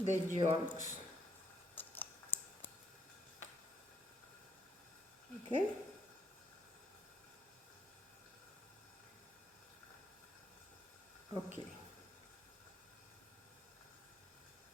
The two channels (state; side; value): normal; both; correlation 0.73